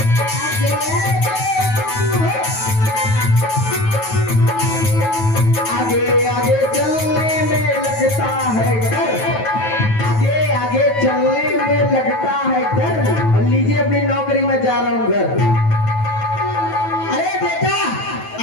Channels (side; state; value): right; late; 9.2 ms